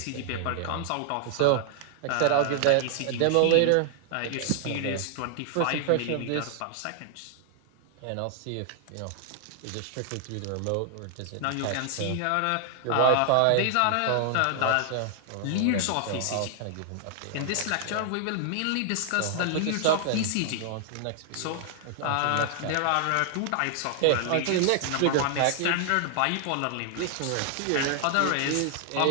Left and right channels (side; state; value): both; different; correlation 0.00